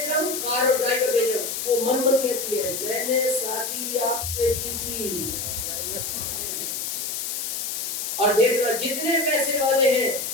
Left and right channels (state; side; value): noise; left; hiss, 3 dB below the sound